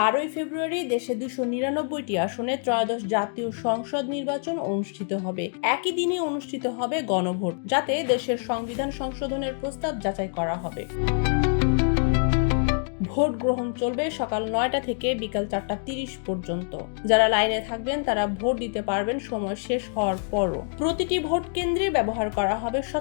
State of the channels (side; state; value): right; silent; 60 dB below the other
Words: ফেব্রুয়ারি দেশে 299টি আসনে ত্রয়োদশ জাতীয় সংসদ নির্বাচন অনুষ্ঠিত হবে। একই দিনে অনুষ্ঠিত হবে গণভোট, যাতে দেশের সংবিধান সংশোধনের প্রস্তাব যাচাই করা হবে। ভোট গ্রহণ চলবে সকাল 9টা থেকে বিকাল 4:30 পর্যন্ত। যারা লাইনে থাকবেন তারা ভোট দিতে পারবেন সময় শেষ হওয়ার পরও। প্রতিটি ভোট কেন্দ্রে ব্যবহার করা হবে